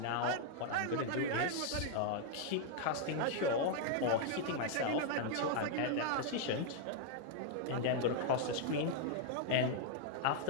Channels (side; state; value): both; different; correlation -0.01